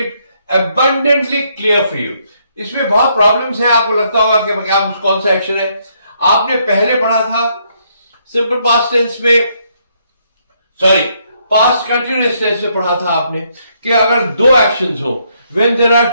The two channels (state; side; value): inverted; both; correlation -0.73